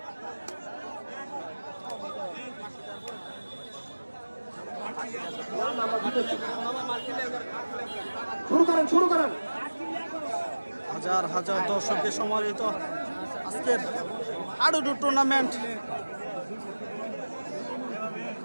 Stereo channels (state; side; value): inverted; both; correlation -1.00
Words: শুরু করেন। হাজার হাজার দর্শকের সমাহিত আজকের হাডুডু টুর্নামেন্ট।